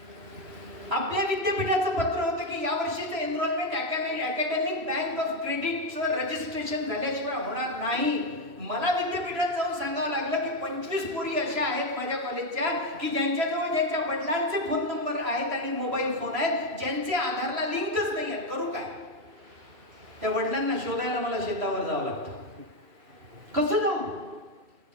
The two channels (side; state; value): left; late; 2.6 ms